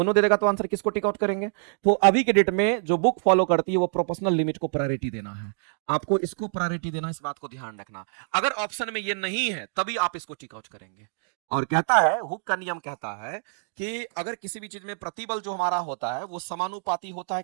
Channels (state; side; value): silent; left; digital silence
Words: दे देगा तो आंसर किसको टिक आउट करेंगे? तो अभी के डेट में जो बुक फॉलो करती है वो प्रोपोर्शनल लिमिट को प्रायोरिटी देना है, आपको इसको प्रायोरिटी देना, इस बात को ध्यान रखना। अगर ऑप्शन में ये नहीं है तभी आप इसको टिक आउट करेंगे। और कहता है हुक का नियम कहता है कि अगर किसी भी चीज में प्रतिबल जो हमारा होता है वो समानुपाती होता है